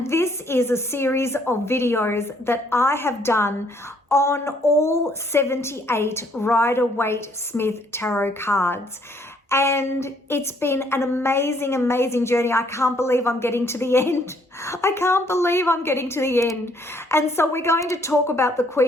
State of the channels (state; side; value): normal; both; correlation 0.66